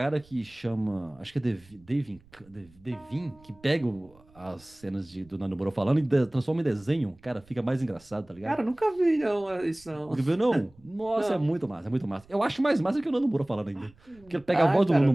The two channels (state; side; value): noise; right; rumble, 28 dB below the sound